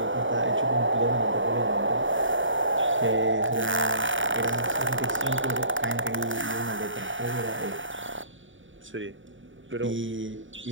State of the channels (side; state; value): left; late; 0.56 ms